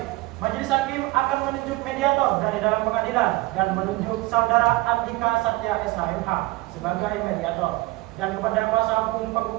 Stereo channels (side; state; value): left; quieter; 20.8 dB